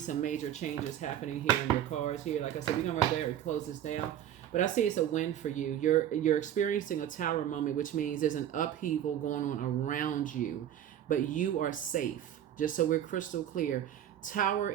major changes happening here in your cards here. Like I said, we're going to right there and close this down. But I see it's a win for you. You're experiencing a tower moment, which means there's an upheaval going on around you, but you are safe. Just so we're crystal clear, tower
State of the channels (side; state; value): left; quieter; 10.8 dB